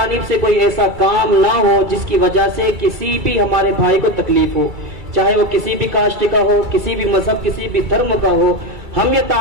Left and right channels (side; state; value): left; late; 2.3 ms